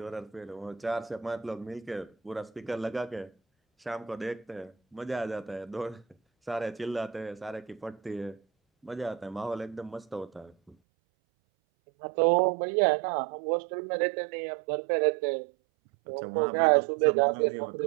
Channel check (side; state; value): left; drops out; at 10.8 s